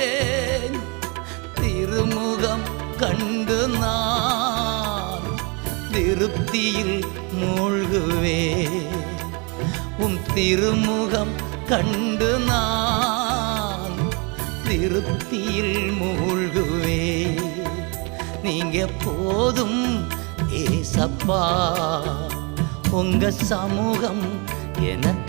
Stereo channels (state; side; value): quieter; left; 31.7 dB